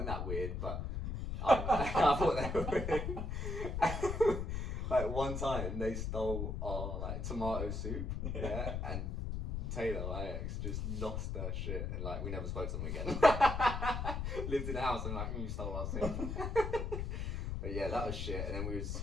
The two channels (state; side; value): noise; left; rumble, 2 dB below the sound